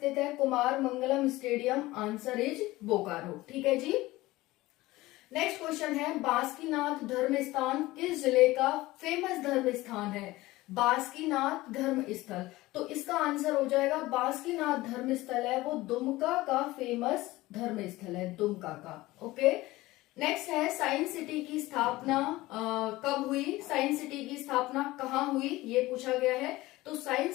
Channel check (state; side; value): quieter; right; 18.7 dB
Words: है Kumar Mangalam stadium? Answer is Bokaro. ठीक है जी। नेक्स्ट क्वेश्चन है, बासुकीनाथ धर्म स्थान किस जिले का फेमस धर्म स्थान है? बासुकीनाथ धर्म स्थल, तो इसका आंसर हो जाएगा बासुकीनाथ धर्म स्थल है वो दुमका का फेमस धर्म स्थल है, दुमका का। ओके, नेक्स्ट है, साइंस सिटी की स्थापना कब हुई? साइंस सिटी की स्थापना कहाँ हुई, ये पूछा गया है। तो